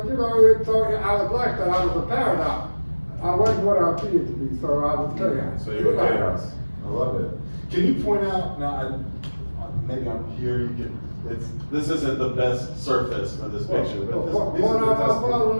know, so I was like that. I was a paradox. I wasn't what I appeared to be, so I was chaos. So you were chaos. I love it. Can you point out, now, maybe I'm here, you can, this isn't the best surface for this picture, but these are the my best. father in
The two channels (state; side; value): inverted; both; correlation -1.00